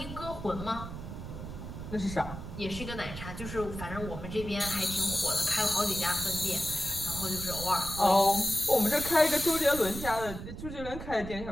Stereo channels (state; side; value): noise; right; rumble, 9 dB below the sound